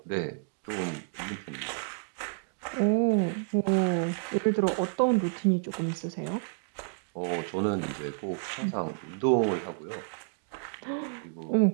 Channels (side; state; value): left; silent; digital silence